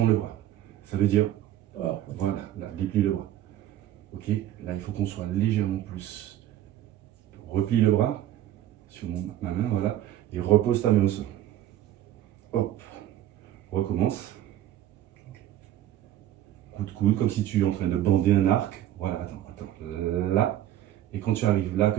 le bras. Ça veut dire, voilà, là, déplie le bras. Ok, là, il faut qu'on soit légèrement plus. Replie le bras sur ma main, voilà. Et repose ta main au sol. Hop. Recommence. Coup de coude, comme si tu es en train de bander un arc. Voilà, attends. Là. Et quand tu arrives là,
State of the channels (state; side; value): quieter; left; 12.6 dB